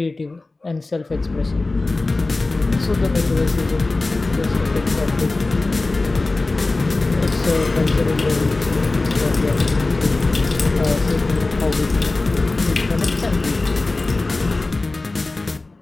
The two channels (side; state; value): right; quieter; 3.2 dB